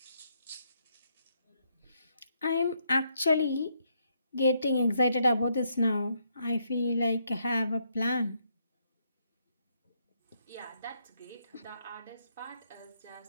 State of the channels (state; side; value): inverted; both; correlation -0.75